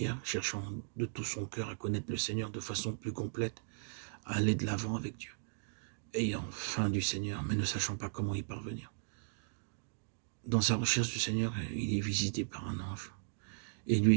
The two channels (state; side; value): silent; left; digital silence